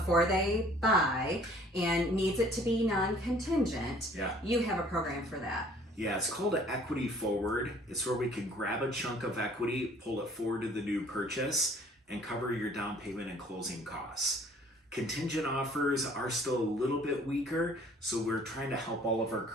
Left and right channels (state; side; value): normal; both; correlation 0.55